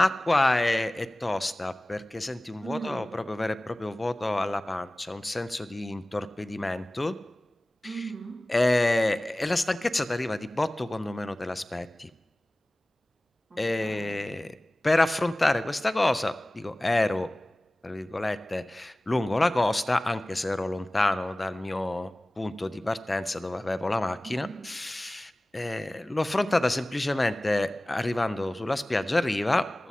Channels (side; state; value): both; normal; correlation 0.98